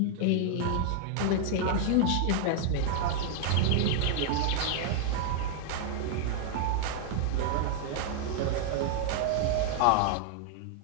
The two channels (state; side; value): different; both; correlation -0.01